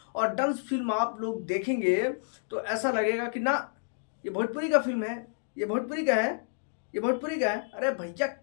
और डंस फिल्म आप लोग देखेंगे तो ऐसा लगेगा कि ना ये भोजपुरी का फिल्म है, ये भोजपुरी का है, ये भोजपुरी का है। अरे भैया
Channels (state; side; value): silent; right; digital silence